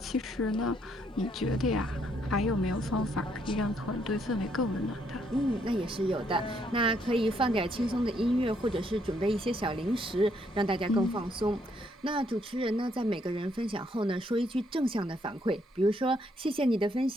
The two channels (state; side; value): normal; both; correlation 0.71